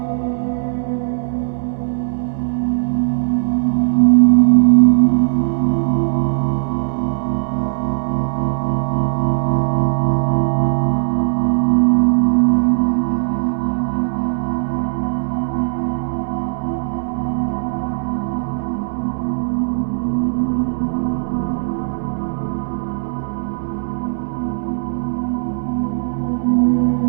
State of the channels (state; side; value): silent; left; 67 dB below the other